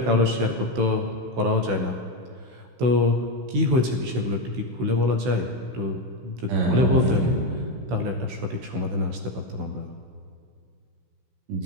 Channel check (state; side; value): late; left; 16 ms